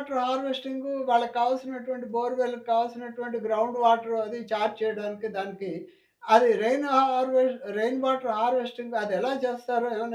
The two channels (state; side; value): identical; both; correlation 1.00